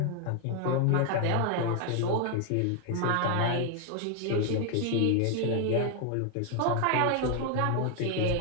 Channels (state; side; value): different; both; correlation 0.01